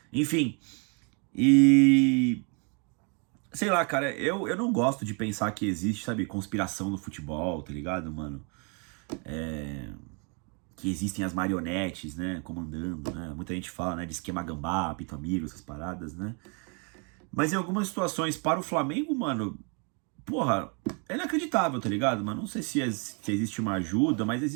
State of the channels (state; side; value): quieter; left; 35.8 dB